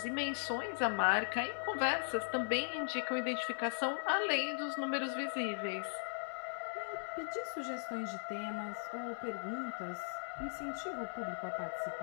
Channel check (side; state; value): right; silent; 52 dB below the other